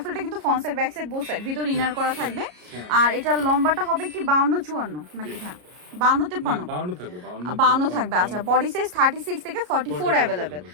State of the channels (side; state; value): left; late; 33 ms